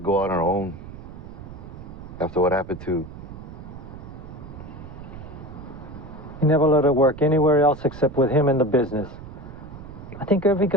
on her own. After what happened to... He never let her work anywhere else except with him in the business. I think every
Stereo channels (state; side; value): noise; right; rumble, 13 dB below the sound